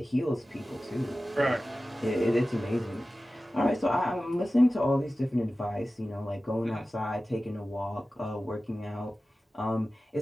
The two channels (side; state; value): both; normal; correlation 0.95